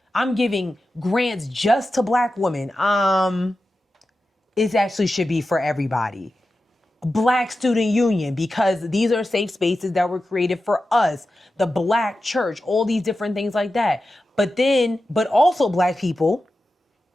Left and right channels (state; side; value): normal; both; correlation 0.92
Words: I'm giving grants just to black women. It actually should be for everybody. Black Student Union, because these are safe spaces that were created for us. The Black Church, all these different things like that. But also black people,